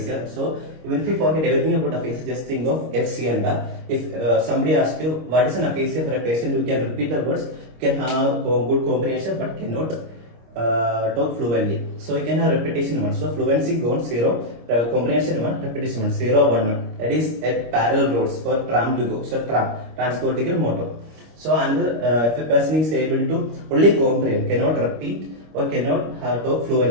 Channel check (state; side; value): late; left; 25 ms